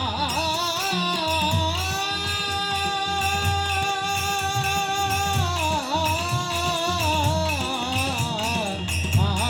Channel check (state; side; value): identical; both; correlation 1.00